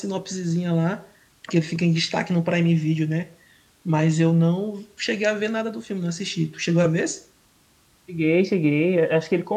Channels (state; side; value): identical; both; correlation 1.00